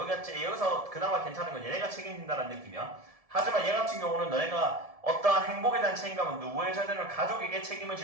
그나마 괜찮은 건 얘네가 책임진다는 느낌이야. 하지만 얘 같은 경우는 너네가 어떠한 행복에 대한 책임감은 누구에게 져야 되는 가족에게 책임을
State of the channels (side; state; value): left; late; 1.7 ms